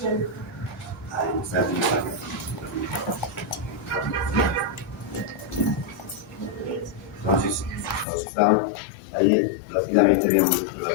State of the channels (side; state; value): right; drops out; at 8.1 s